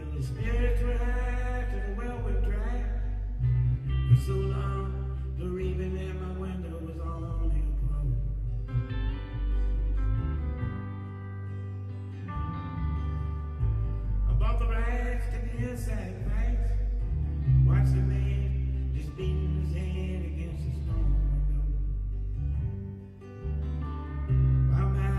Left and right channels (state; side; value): identical; both; correlation 1.00